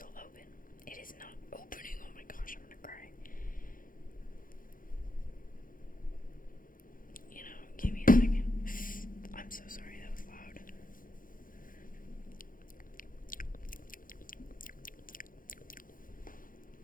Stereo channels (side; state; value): right; late; 0.40 ms